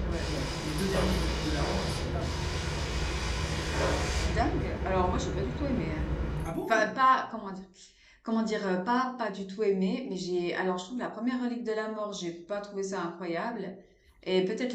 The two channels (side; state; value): both; identical; correlation 1.00